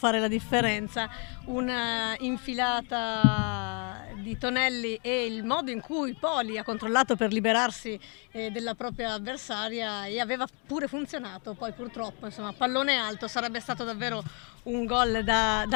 la differenza. Una infilata di Tonelli e il modo in cui Poli ha controllato per liberarsi della propria avversaria, e aveva pure funzionato. Poi purtroppo, insomma, pallone alto, sarebbe stato davvero un gol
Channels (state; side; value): quieter; right; 36.9 dB